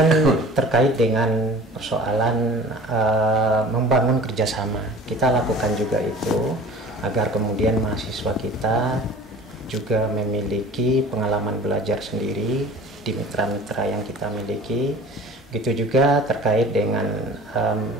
terkait dengan persoalan membangun kerjasama, kita lakukan juga itu agar kemudian mahasiswa kita juga memiliki pengalaman belajar sendiri di mitra-mitra yang kita miliki. Begitu juga terkait dengan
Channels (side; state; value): both; normal; correlation 0.43